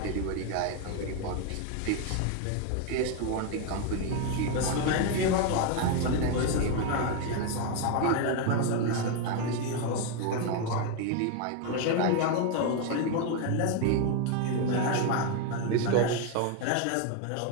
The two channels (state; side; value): different; both; correlation 0.01